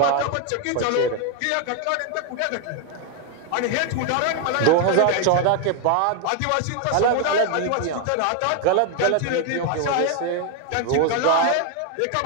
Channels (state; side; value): different; both; correlation 0.01